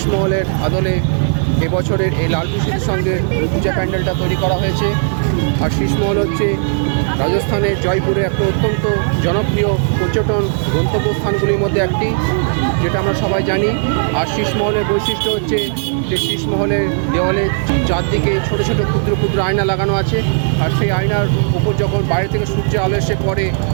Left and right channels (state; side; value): silent; left; digital silence